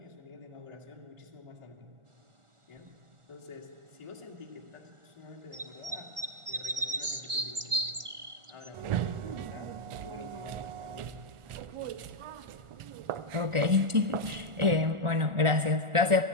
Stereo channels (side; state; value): left; late; 1.4 ms